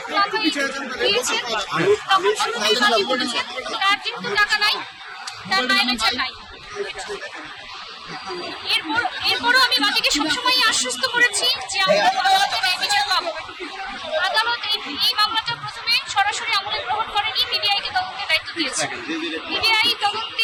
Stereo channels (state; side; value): identical; both; correlation 1.00